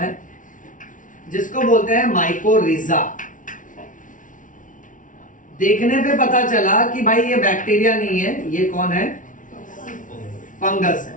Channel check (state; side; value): late; right; 0.38 ms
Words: जिसको बोलते हैं माइकोरिजा। देखने पे पता चला कि भाई ये बैक्टीरिया नहीं है, ये कौन है? फंगस है।